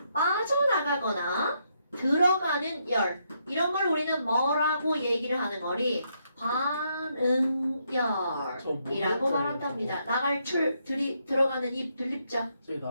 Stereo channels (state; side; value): inverted; both; correlation -0.77